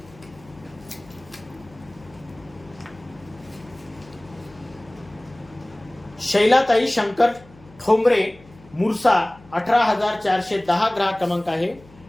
शैलाताई शंकर ठोंबरे मुरसा 18,410 ग्राहक क्रमांक आहे.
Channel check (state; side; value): noise; left; hum, 24 dB below the sound